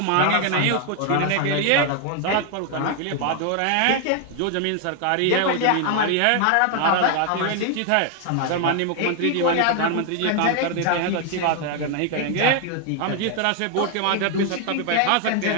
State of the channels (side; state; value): both; different; correlation 0.00